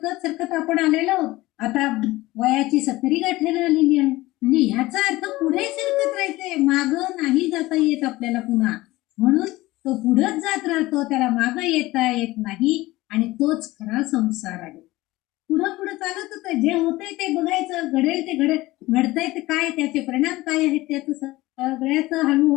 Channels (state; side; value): quieter; right; 18.8 dB